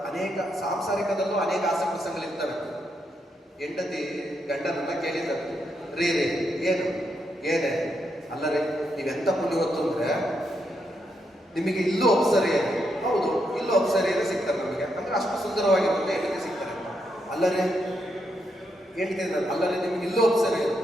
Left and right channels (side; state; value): both; normal; correlation 0.80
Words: ಅನೇಕ ಸಾಂಸಾರಿಕದಲ್ಲೂ ಅನೇಕ ಆಸೆ ಪ್ರಸಂಗಗಳಿರ್ತವೆ. ಹೆಂಡತಿ ಗಂಡನನ್ನ ಕೇಳಿದ್ದಾರೆ, ರೀ ಏನೇ ಅಲ್ಲರೇ ನೀವೆಂತ ಪುಣ್ಯವತ್ತು ಅಂದ್ರೆ ನಿಮಗೆ ಇಲ್ಲೂ ಅಪ್ಸರಿಯರು, ಹೌದು ಇಲ್ಲೂ ಅಪ್ಸರಿಯರೇ ಸಿಗ್ತಾರೆ ನಮಗೆ, ಅಂದ್ರೆ ಅಷ್ಟು ಸುಂದರವಾಗಿರುತ್ತೆ ಹೆಂಡತಿ ಸಿಗ್ತಾರೆ. ಅಲ್ಲರೇ ಹೇಳ್ತೀನಿ, ಅಲ್ಲರೇ ನಿಮ್ಗೆ ಇಲ್ಲೂ ಅಪ್ಸರಿಯರು,